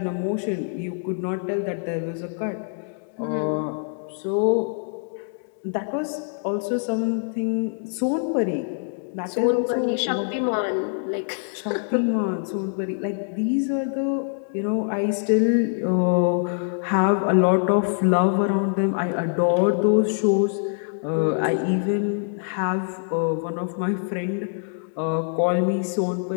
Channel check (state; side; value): silent; right; digital silence